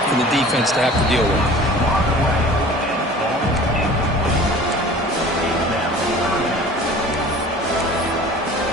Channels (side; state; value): both; normal; correlation 0.44